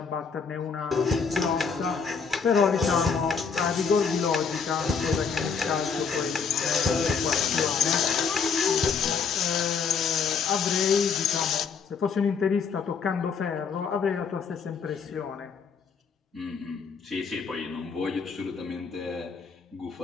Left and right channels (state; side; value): quieter; right; 5.8 dB